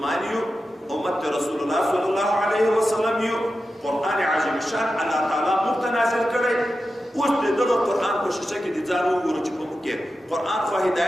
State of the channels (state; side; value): normal; both; correlation 0.91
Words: یو، امت رسول الله صلی الله علیه وسلم یو. قرآن عظیم شان الله تعالی موږ ته نازل کړی. اوس د دغه قرآن په شیشه کې د ځان وګورو چې په موږ کې قرآن خو